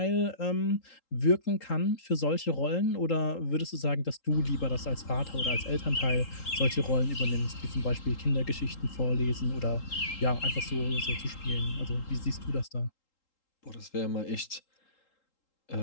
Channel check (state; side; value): late; right; 3.8 ms